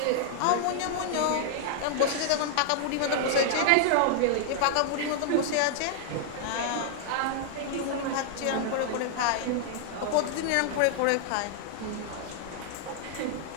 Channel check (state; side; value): different; both; correlation -0.01